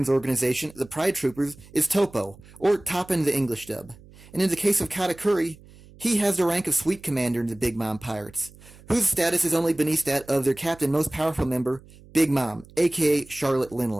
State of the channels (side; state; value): right; noise; hum, 23 dB below the sound